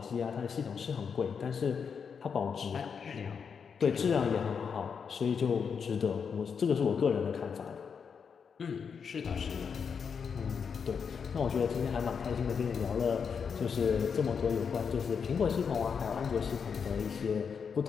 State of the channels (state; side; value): quieter; right; 6.4 dB